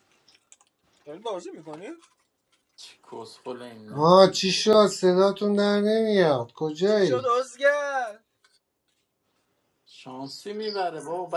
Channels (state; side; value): identical; both; correlation 1.00